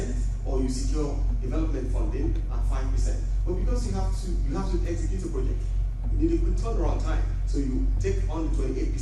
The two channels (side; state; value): both; identical; correlation 1.00